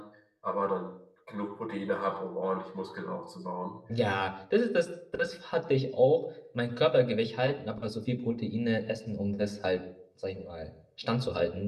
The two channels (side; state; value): both; identical; correlation 1.00